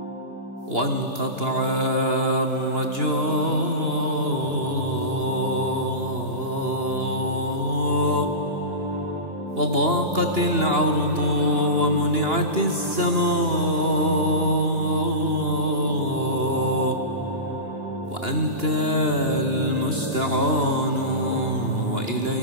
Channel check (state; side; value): late; left; 2.8 ms